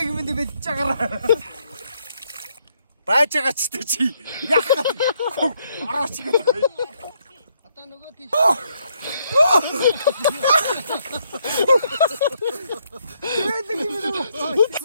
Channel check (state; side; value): inverted; both; correlation -0.74